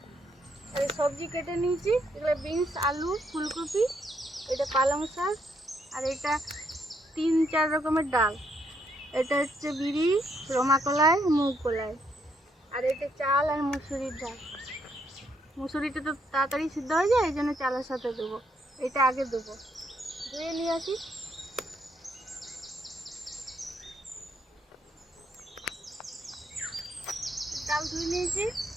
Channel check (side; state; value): both; normal; correlation 0.74